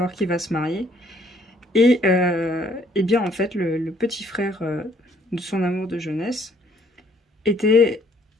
qu'il va se marier. Et bien en fait, le petit frère de son amour de jeunesse était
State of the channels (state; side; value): normal; both; correlation 0.63